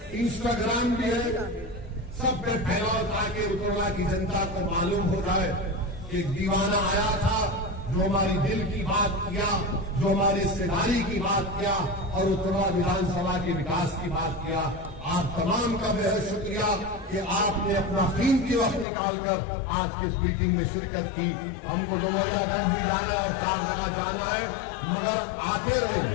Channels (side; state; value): right; drops out; at 18.9 s